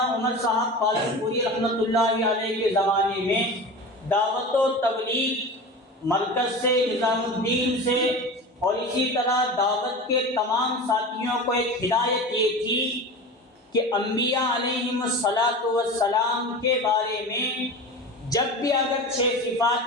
عمر صاحب پالنپوری رحمۃ اللہ علیہ کے زمانے میں دعوت و تبلیغ مرکز سے، نظام الدین سے اور اسی طرح دعوت کے تمام ساتھیوں کو ایک ہدایت یہ تھی کہ انبیاء علیہم السلام کے بارے میں جب بھی اگر 6 صفات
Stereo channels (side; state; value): both; normal; correlation 0.31